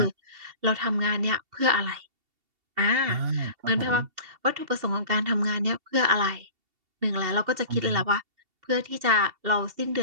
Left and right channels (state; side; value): late; left; 2.7 ms